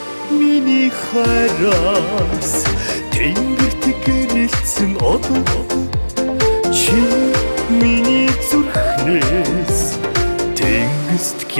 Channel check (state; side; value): inverted; both; correlation -1.00